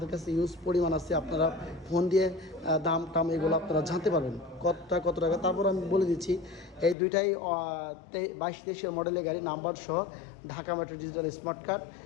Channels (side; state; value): right; drops out; at 7.0 s